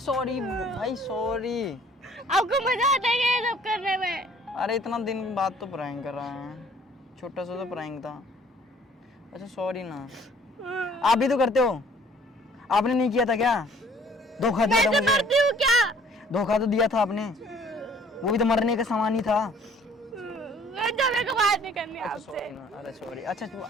भाई सॉरी, आपको मजा आता है क्या ये सब करने में? अरे इतना दिन बाद तो प्रैंक कर रहा है, छोटा सा तो प्रैंक था। अच्छा सॉरी ना, आप भी तो करते हो, आपने नहीं किया था क्या? धोखा दिया था मैं मुझे, मरती हूँ क्या? धोखा तो दिया था आपने, वो भी तो मरने का सामान ही था। हट जाओ, मेरे को बात नहीं करनी आपसे। सॉरी ना, अरे सॉरी, अच्छा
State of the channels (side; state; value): both; normal; correlation 0.57